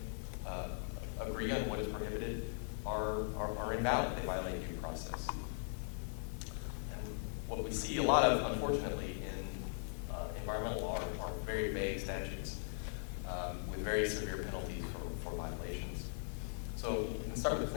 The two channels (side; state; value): right; silent; digital silence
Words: agree on what is prohibited are invalid. They violate due process. And what we see a lot of, unfortunately, in environmental law are very vague statutes with very severe penalties start with the